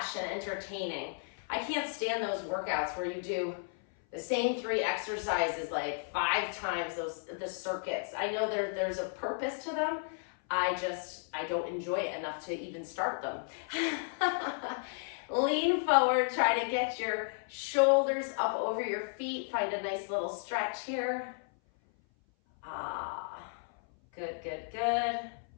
and entertaining. I can't stand those workouts where you do the same 3 exercises like 5 times, the circuits. I know there's a purpose to them. I don't enjoy it enough to even start them. Lean forward, try to get your shoulders up over your feet. Find a nice little stretch here. Good, good, good.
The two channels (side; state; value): right; silent; 55 dB below the other